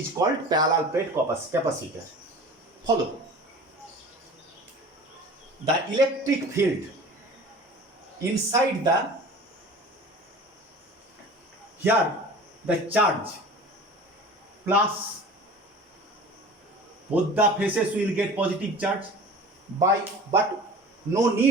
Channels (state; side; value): normal; both; correlation 0.39